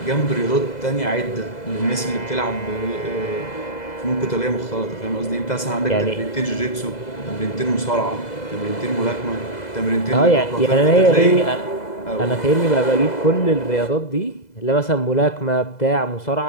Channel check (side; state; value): right; late; 2.0 ms